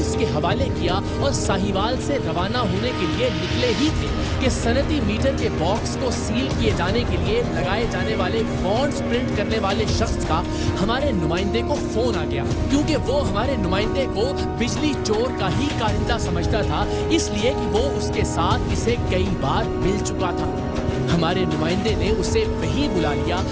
के हवाले किया और साहिवाल से रवाना होने के लिए निकले ही थे कि सनती मीटर के बॉक्स को सील किए जाने के लिए लगाए जाने वाले बॉन्ड्स प्रिंट करने वाले शख्स का हमारे नुमाइंदे को फोन आ गया, क्योंकि वो हमारे नुमाइंदे को बिजली चोर का ही कारिंदा समझता था, इसलिए कि वो उसके साथ इसे कई बार मिल चुका था। हमारे नुमाइंदे ने उसे वहीं बुला लिया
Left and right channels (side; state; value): both; identical; correlation 1.00